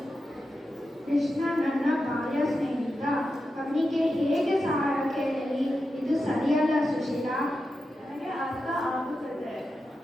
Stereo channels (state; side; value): normal; both; correlation 0.90